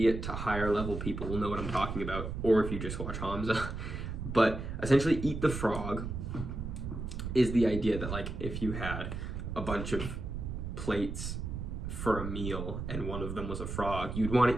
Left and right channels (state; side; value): noise; right; rumble, 5 dB below the sound